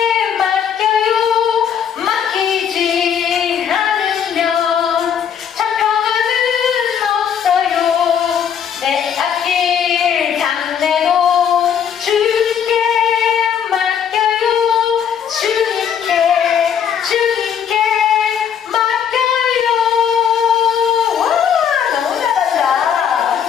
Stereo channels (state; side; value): quieter; right; 8.2 dB